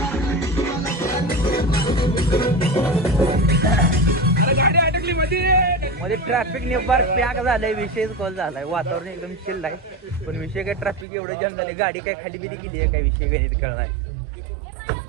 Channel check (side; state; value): left; drops out; at 11.1 s